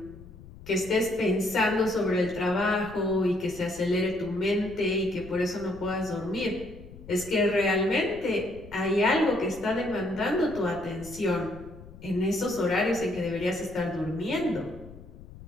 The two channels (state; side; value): noise; left; rumble, 17 dB below the sound